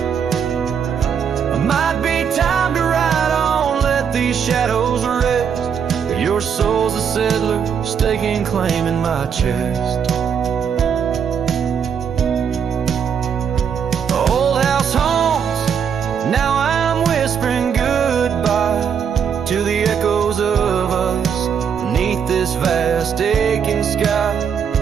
Might be time to ride on, let these shadows rest. Your soul's a settler, staking claim in my chest. Old house haunts, now I'm whispering goodbye to the echoes of us beneath this vast aching sky,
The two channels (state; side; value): quieter; left; 7.3 dB